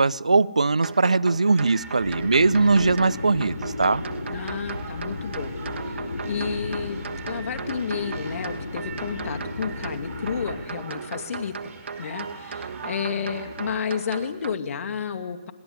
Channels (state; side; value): inverted; both; correlation -0.80